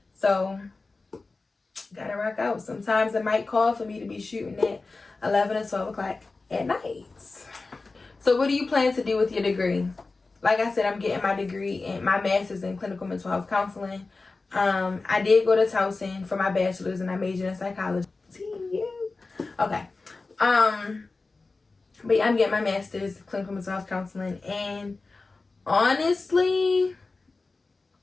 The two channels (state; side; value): quieter; right; 3.7 dB